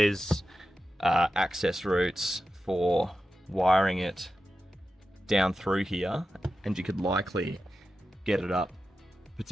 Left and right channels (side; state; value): both; normal; correlation 0.91